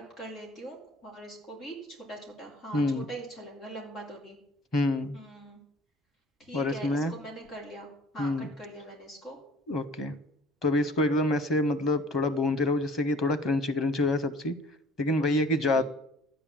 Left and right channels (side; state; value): both; normal; correlation 0.51